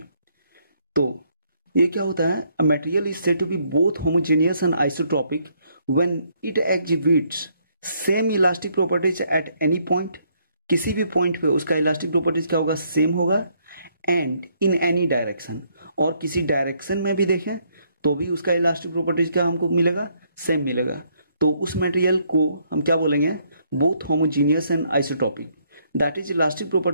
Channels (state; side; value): inverted; both; correlation -0.70